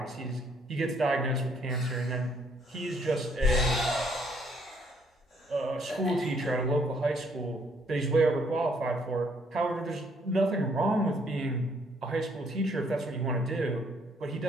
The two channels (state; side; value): normal; both; correlation 0.67